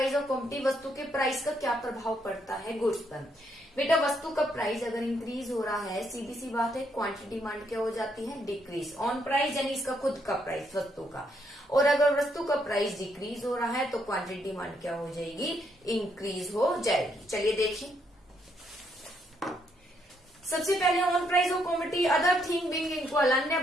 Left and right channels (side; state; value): both; normal; correlation 0.74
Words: ऑफ कमोडिटी, वस्तु के प्राइस का क्या प्रभाव पड़ता है गुड्स पर। बेटा वस्तु का प्राइस अगर इंक्रीज हो रहा है, सीधी सी बात है क्वांटिटी डिमांड क्या हो जाती है, डिक्रीज। ऑन प्राइस यानी इसका खुद का प्राइस वस्तु का, और अगर वस्तु का प्राइस डिक्रीज हो रहा है तो क्वांटिटी डिमांड क्या हो जाएगी, इंक्रीज हो जाएगी। चलिए देखिए, सबसे पहले on price of commodity, other thing being equal, अन्य